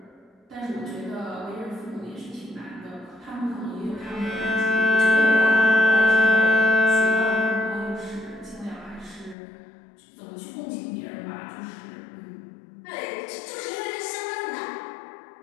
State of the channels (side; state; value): right; drops out; at 9.3 s